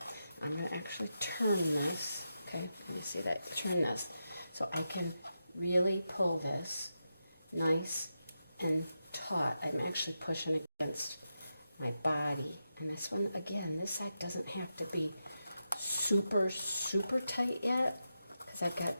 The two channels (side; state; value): both; inverted; correlation -0.88